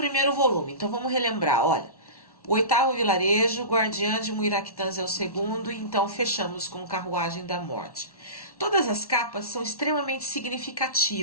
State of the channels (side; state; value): right; late; 1.1 ms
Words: volume, então vamos relembrar, olha, o oitavo vilarejo, Guardiã de Muiractans é o segundo, e então fechamos com Carruagem da Morte. Todas as capas são extremamente